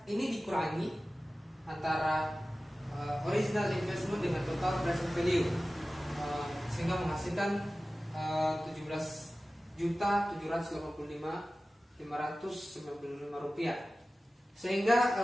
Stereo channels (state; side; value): normal; both; correlation 0.96